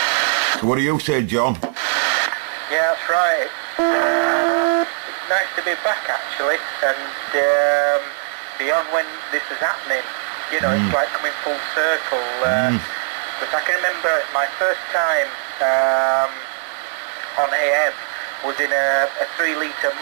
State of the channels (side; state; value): left; silent; digital silence